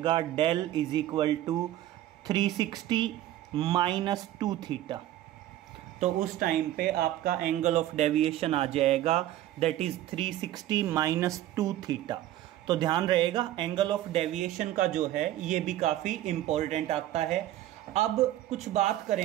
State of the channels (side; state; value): left; quieter; 13.8 dB